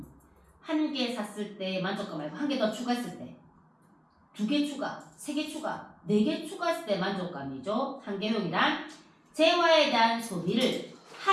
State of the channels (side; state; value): both; identical; correlation 1.00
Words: 한 개 샀을 때 만족감 말고 한 개 더 추가했을 때. 2개 추가, 3개 추가, 4개 추가했을 때 만족감이죠. 한계효용이란 재화에 대한 소비를